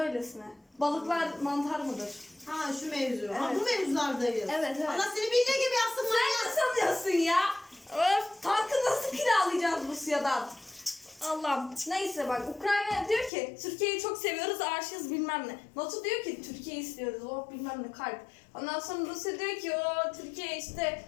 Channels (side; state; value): right; drops out; at 13.3 s